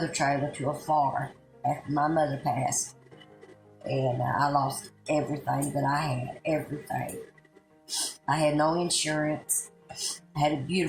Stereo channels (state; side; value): identical; both; correlation 1.00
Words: trailer to a fire after my mother passed. And I lost everything that I had, everything. I had no insurance. I had a